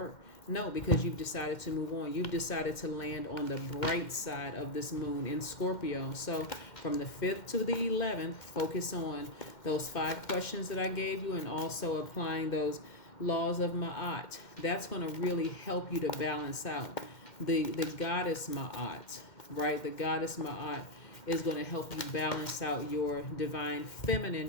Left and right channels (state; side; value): late; right; 2.1 ms